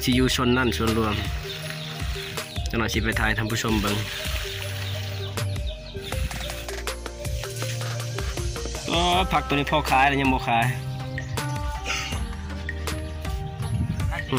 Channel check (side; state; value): both; identical; correlation 1.00